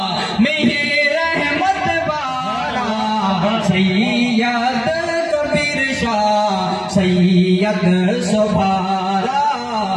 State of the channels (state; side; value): identical; both; correlation 1.00